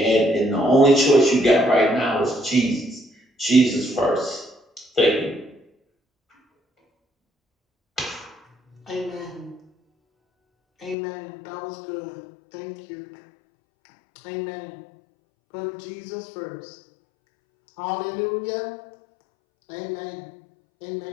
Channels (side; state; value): right; drops out; at 11.0 s